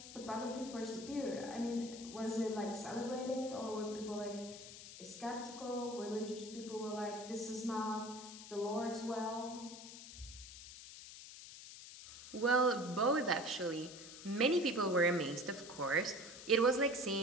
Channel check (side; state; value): left; noise; hiss, 13 dB below the sound